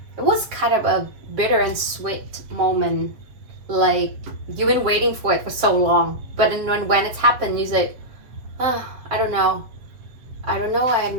It was kind of a bitter and sweet moment. Like you've been waiting for it for so long, but then when it's happened, you say, oh, I don't know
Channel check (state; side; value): late; left; 7.7 ms